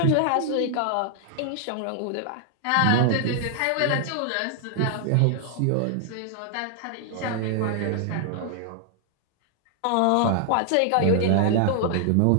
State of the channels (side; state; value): both; different; correlation 0.00